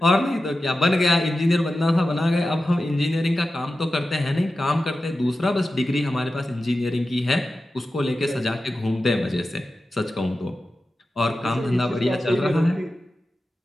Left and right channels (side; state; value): both; normal; correlation 0.93